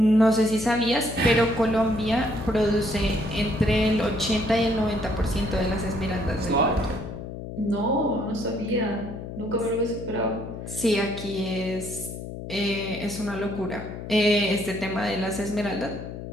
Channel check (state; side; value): noise; left; hum, 9 dB below the sound